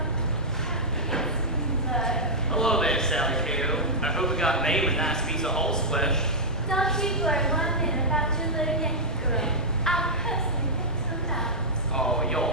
Hello there, Sally Cato. I hope we got Mame a nice piece of horse flesh. Don't you worry 1 minute about your little Yankee girl. I'll personally pick some out. Oh, you're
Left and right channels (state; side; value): normal; both; correlation -0.10